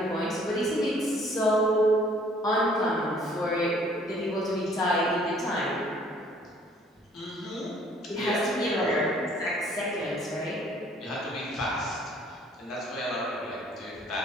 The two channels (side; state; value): both; normal; correlation 0.58